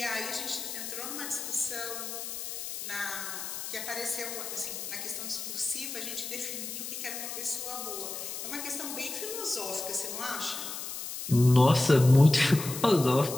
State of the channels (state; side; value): noise; left; hiss, 7 dB below the sound